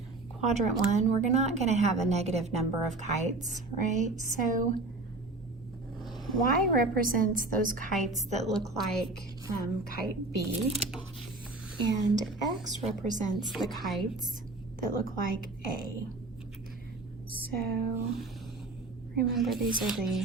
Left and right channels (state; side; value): quieter; left; 3.1 dB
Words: quadrant 1. We're not going to have a negative number of kites, right? So y represents those kites that look like kite B, and x represents the kites that look like A. So remember, these are